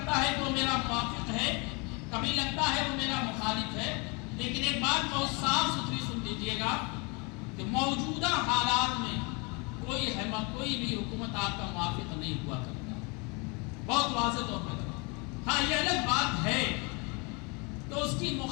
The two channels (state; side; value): quieter; right; 30.8 dB